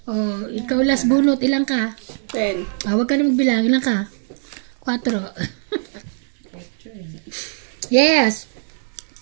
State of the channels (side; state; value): left; silent; 61 dB below the other